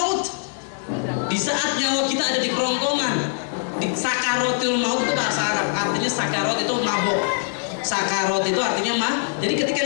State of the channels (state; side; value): silent; right; digital silence